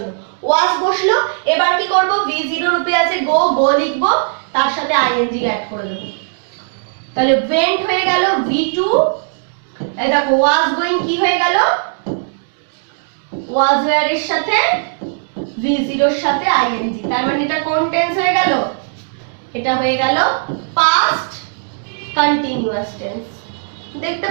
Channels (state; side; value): silent; left; digital silence